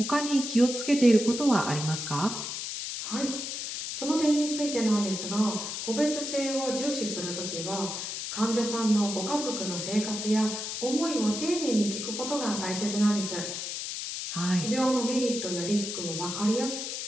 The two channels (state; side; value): noise; left; hiss, 5 dB below the sound